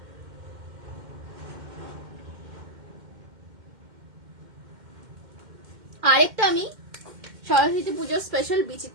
আরেকটা আমি সরস্বতী পুজোর স্পেশাল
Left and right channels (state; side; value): late; left; 2.1 ms